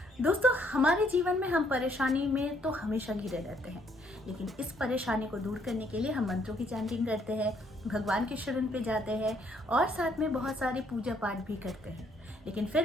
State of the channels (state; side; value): normal; both; correlation 0.68